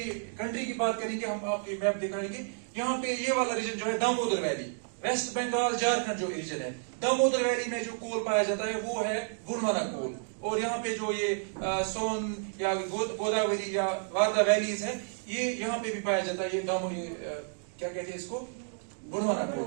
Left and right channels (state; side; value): silent; left; 57 dB below the other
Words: कंट्री की बात करेंगे, हम आपके मैप दिखाएंगे. यहाँ पे ये वाला रीजन जो है दामोदर वैली, वेस्ट बंगाल, झारखंड जो रीजन है, दामोदर वैली में जो कोल पाया जाता है वो है गोंडवाना कोल. और यहाँ पे जो ये सोन या गोदावरी या वारदा वैलीज है, ये यहाँ पे भी पाया जाता है. ये क्या कहते हैं इसको, Gondwana